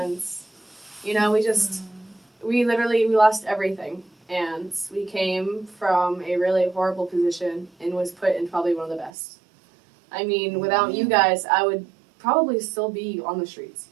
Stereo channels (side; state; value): left; drops out; at 9.1 s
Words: we lost everything, and we came from a really horrible position and was put in probably one of the best. Without you guys, I would probably still be on the streets.